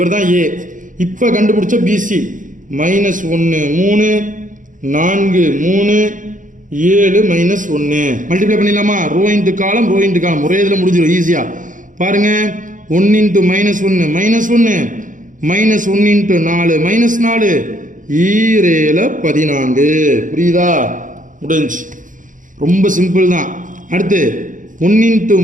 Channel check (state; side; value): late; left; 0.38 ms